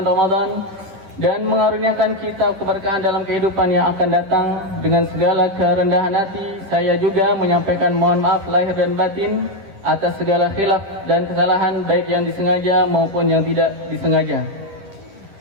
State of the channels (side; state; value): left; late; 10 ms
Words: Ramadan dan mengaruniakan kita keberkahan dalam kehidupan yang akan datang. Dengan segala kerendahan hati, saya juga menyampaikan mohon maaf lahir dan batin atas segala khilaf dan kesalahan baik yang disengaja maupun yang tidak disengaja.